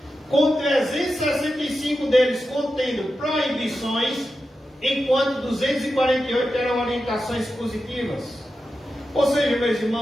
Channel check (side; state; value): both; normal; correlation 0.90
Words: com 365 deles contendo proibições, enquanto 248 eram orientações positivas. Ou seja, meus